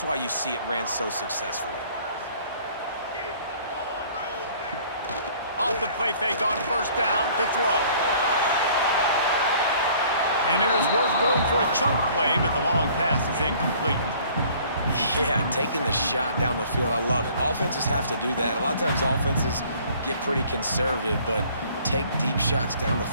why you see it ran so successfully. Off the play fake on first down to throw. And it was worth going for a chunk play, but the long pass is incomplete. Yeah, taking the shot down the field, I love it. Offenses have to do that. A lot of times offenses get pretty conservative, but take deep shots down the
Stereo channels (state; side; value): inverted; both; correlation -0.55